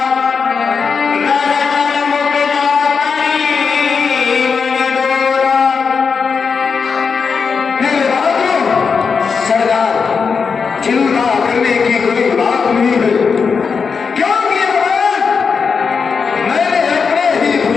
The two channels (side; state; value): right; quieter; 5.6 dB